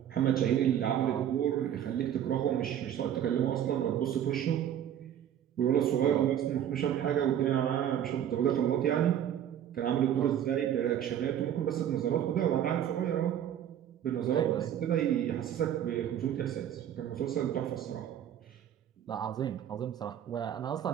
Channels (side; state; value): left; quieter; 10.2 dB